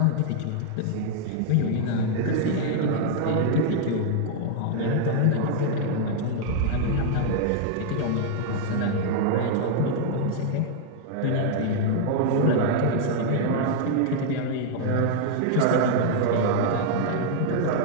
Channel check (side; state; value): both; different; correlation -0.01